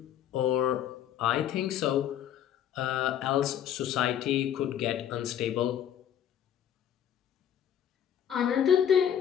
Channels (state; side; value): quieter; right; 9.9 dB